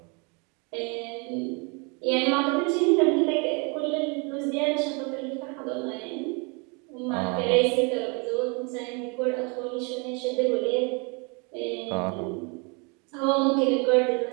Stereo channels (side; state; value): left; quieter; 32.7 dB